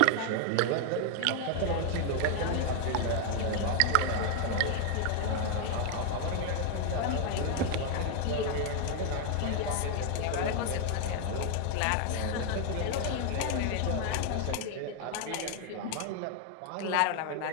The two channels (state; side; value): different; both; correlation 0.00